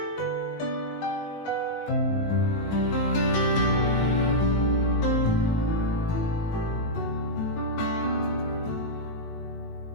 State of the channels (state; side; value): late; right; 19 ms